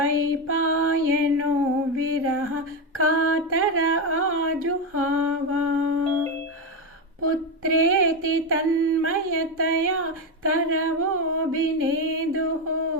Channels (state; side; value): normal; both; correlation 0.11